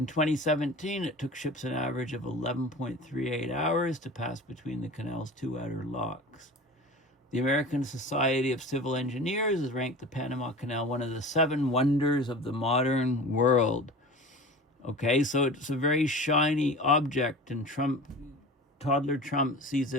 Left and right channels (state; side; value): normal; both; correlation 0.36